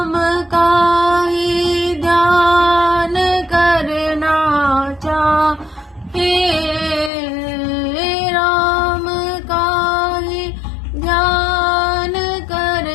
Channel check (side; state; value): right; drops out; at 7.1 s